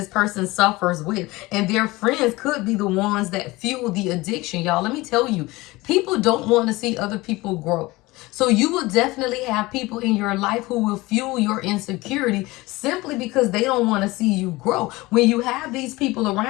person suffers with, and their friends could be the ones that fuel the addiction. Y'all, let me tell you, people don't want to see other people grow. So you will definitely have people in your life who will fuel your insecurity simply because they don't want to see you grow. When you have these people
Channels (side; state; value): right; quieter; 20.9 dB